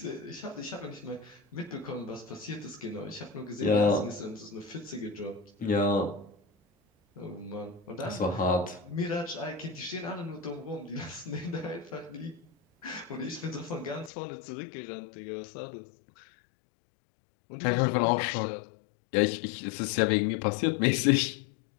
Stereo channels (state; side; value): drops out; right; at 14.1 s